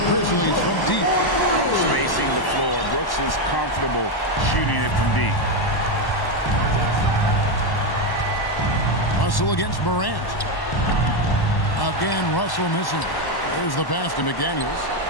Grizzlies from deep. Spacing the floor. Brooks is comfortable shooting it from deep. Russell against Morant. Again, Russell missing. There's the pass to McDaniels.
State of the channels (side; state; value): right; late; 1.1 ms